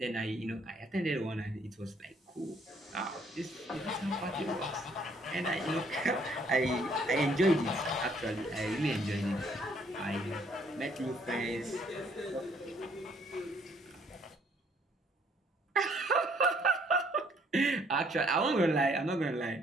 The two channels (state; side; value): normal; both; correlation 0.64